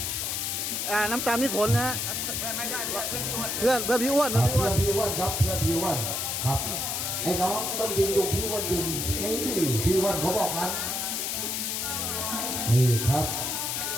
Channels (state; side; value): noise; left; hiss, 1 dB below the sound